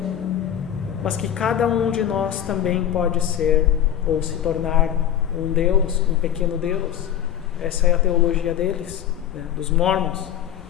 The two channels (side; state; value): right; quieter; 10.3 dB